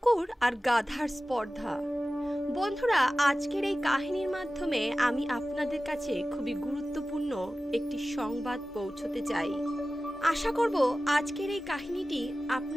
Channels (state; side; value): normal; both; correlation 0.96